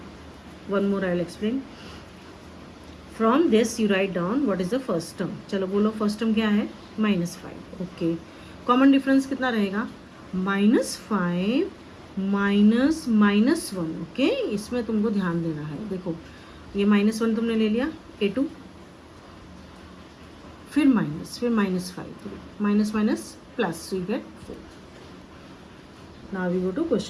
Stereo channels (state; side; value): identical; both; correlation 1.00